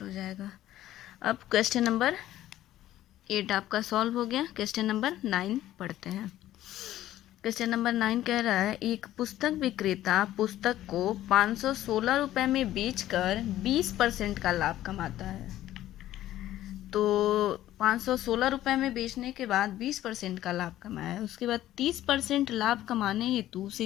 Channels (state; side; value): quieter; right; 13.7 dB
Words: हो जाएगा. अब क्वेश्चन नंबर 8 आपका सॉल्व हो गया. क्वेश्चन नंबर 9 पढ़ते हैं. क्वेश्चन नंबर 9 कह रहा है एक पुस्तक विक्रेता पुस्तक को 516 रुपये में बेचकर 20% का लाभ कमाता है. तो 516 रुपये में बेचने के बाद 20% का लाभ कमाया है. उसके बाद 30% लाभ कमाने हेतु उसे